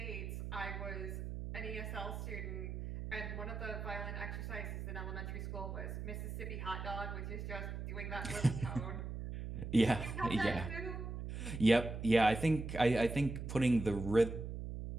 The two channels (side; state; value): right; noise; hum, 6 dB below the sound